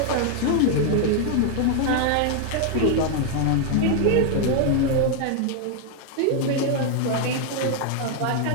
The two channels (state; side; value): different; both; correlation 0.00